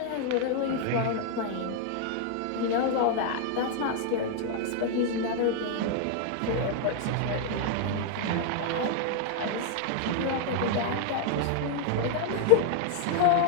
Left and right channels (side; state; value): both; different; correlation 0.00